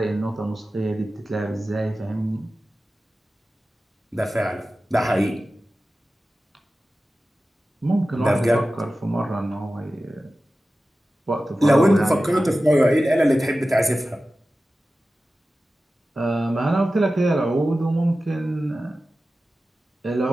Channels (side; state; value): both; normal; correlation 0.95